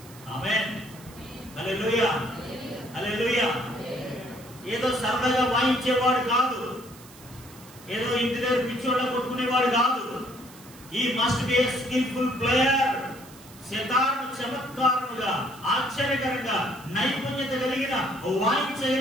ఆమేన్, హల్లెలూయా, హల్లెలూయా. ఏదో సరదాగా వాయించేవాడు కాదు, ఏదో ఇంటి దగ్గర పిచ్చోళ్ళ కొట్టుకునేవాడు కాదు. ఈ must be a skillful player. సితారను చమత్కారముగా, ఆశ్చర్యకరంగా, నైపుణ్యత కలిగిన,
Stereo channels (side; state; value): right; noise; hiss, 21 dB below the sound